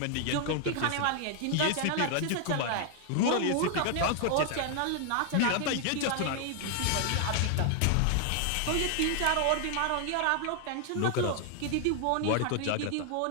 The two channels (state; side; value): different; both; correlation 0.00